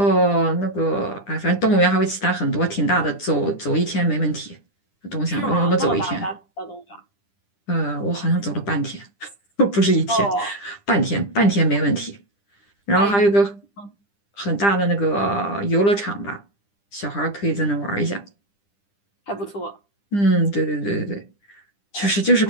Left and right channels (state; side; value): late; right; 9.9 ms